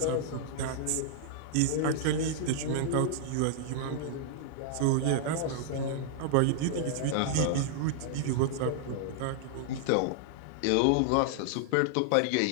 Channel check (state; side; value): different; both; correlation -0.01